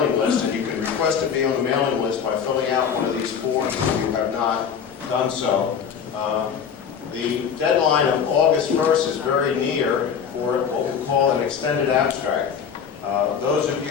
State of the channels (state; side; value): quieter; right; 7.3 dB